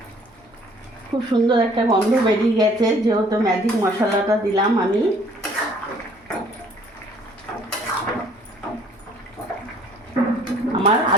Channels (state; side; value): normal; both; correlation 0.58